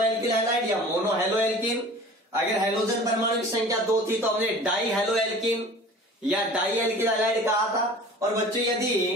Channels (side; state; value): both; normal; correlation 0.43